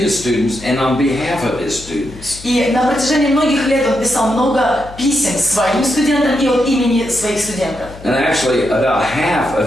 students and on behalf of his students. И на протяжении многих лет он писал много писем своим студентам и от имени своих студентов. And actually, about half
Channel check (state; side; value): noise; left; hum, 17 dB below the sound